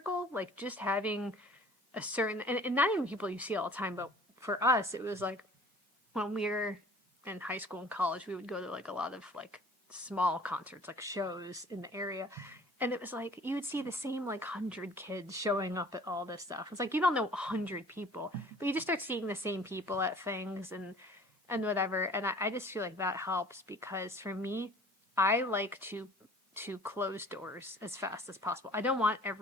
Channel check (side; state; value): both; normal; correlation 0.49